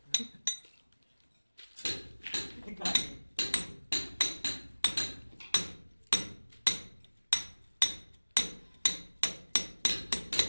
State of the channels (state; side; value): inverted; both; correlation -1.00